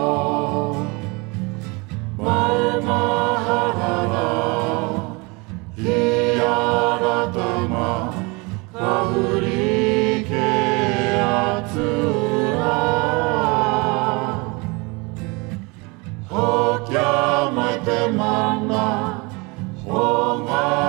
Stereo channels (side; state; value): left; quieter; 27.5 dB